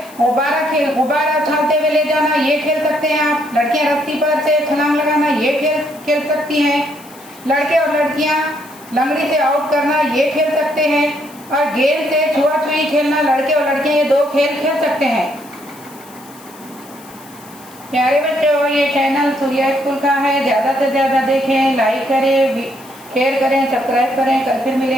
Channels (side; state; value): left; noise; hiss, 22 dB below the sound